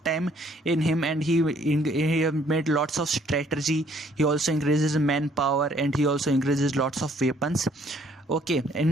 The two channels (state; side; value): normal; both; correlation 0.63